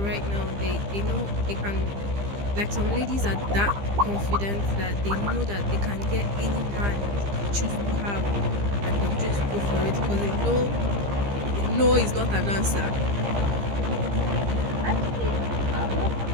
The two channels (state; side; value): late; left; 15 ms